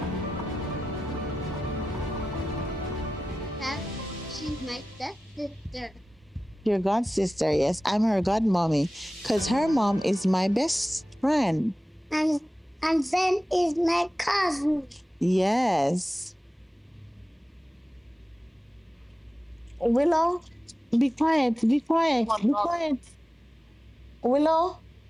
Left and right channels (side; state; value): both; normal; correlation 0.95